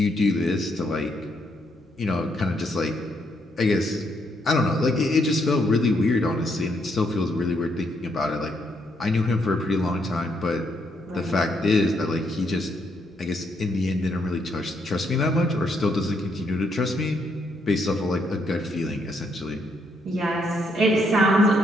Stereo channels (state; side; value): normal; both; correlation 0.75